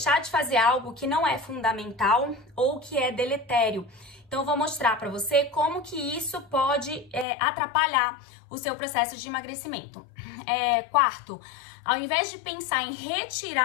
de fazer algo que não é fundamental ou que é deletério. Então, eu vou mostrar para você como que isso pode atrapalhar o seu processo de emagrecimento. Quarto, ao invés de pensar em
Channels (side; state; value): right; drops out; at 7.2 s